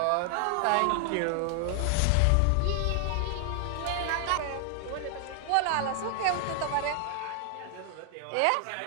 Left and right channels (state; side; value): different; both; correlation 0.00